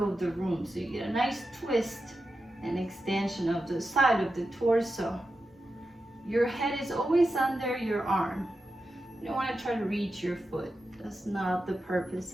the room. So you get a nice twist and extension of the side of the torso. Your head is always under your arm. You don't want to try to reach your foot. That's not the purpose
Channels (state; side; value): normal; both; correlation 0.90